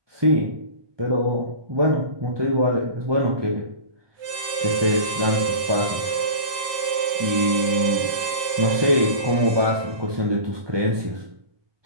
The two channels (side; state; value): left; late; 1.6 ms